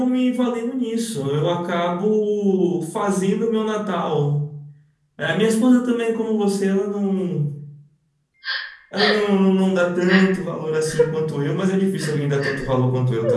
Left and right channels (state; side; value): identical; both; correlation 1.00